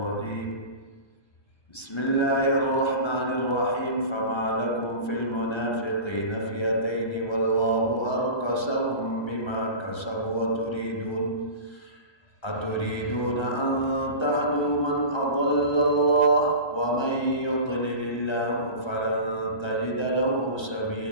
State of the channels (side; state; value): right; late; 1.2 ms